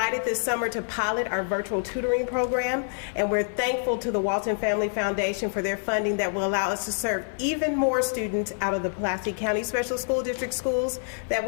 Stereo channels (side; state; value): right; silent; 55 dB below the other